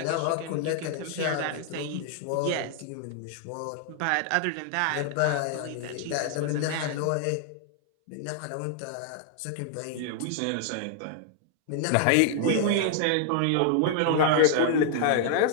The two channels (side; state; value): both; different; correlation 0.00